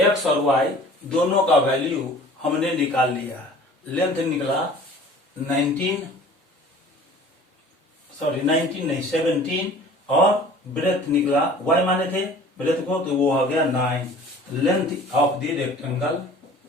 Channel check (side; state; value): both; normal; correlation 0.46